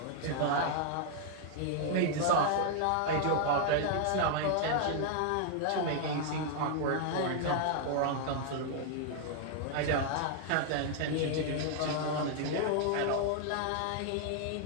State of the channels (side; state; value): both; different; correlation 0.00